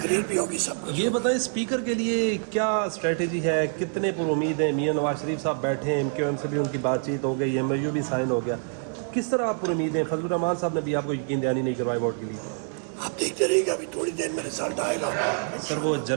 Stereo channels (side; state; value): left; silent; 59 dB below the other